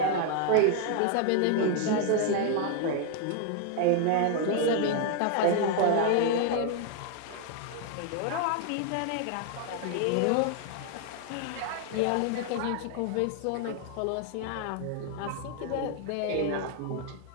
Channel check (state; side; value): different; both; correlation 0.00